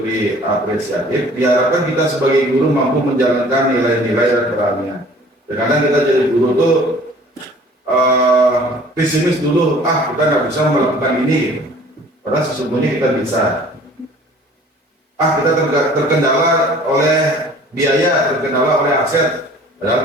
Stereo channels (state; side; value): normal; both; correlation 0.50